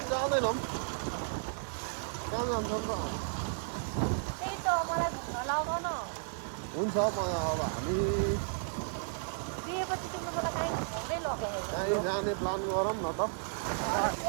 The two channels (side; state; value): left; silent; digital silence